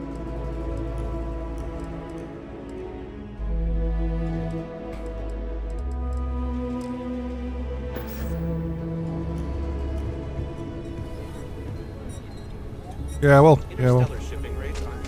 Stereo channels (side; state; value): both; identical; correlation 1.00